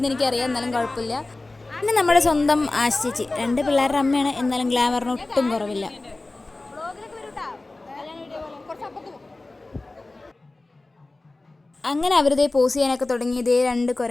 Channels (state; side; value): quieter; right; 3.1 dB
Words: എനിക്കറിയാം, എന്നാലും കുഴപ്പമില്ല. പിന്നെ നമ്മുടെ സ്വന്തം ആശ് ചേച്ചി, 2 പിള്ളേരുടെ അമ്മയാണ്, എന്നാലും ഗ്ലാമറിന് ഒട്ടും കുറവില്ല. അങ്ങനെ അവരിതേ പോസ് ചെയ്യാനൊക്കെ തുടങ്ങി. ഇതേ 2